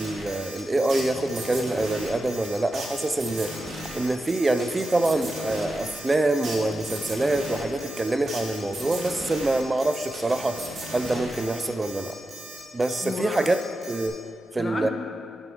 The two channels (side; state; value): both; normal; correlation 0.91